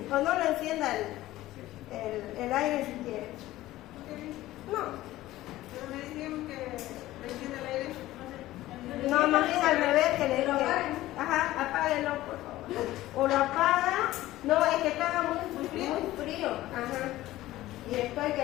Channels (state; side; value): quieter; right; 16.0 dB